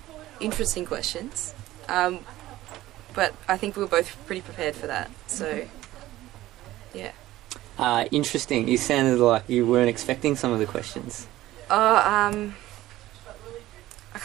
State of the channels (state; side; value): quieter; left; 15.8 dB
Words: interesting questions, but I think we were both pretty prepared for that, so yeah. Interesting. You sounded like you weren't expecting some of the questions. I